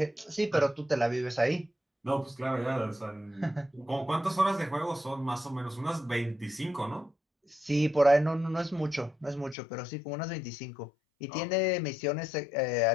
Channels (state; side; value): drops out; right; at 9.6 s